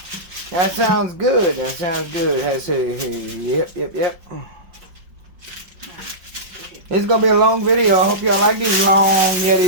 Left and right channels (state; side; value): late; left; 5.6 ms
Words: That sounds good. That sounds good. Yep. It's gonna be a long video. I hope y'all like these long YETI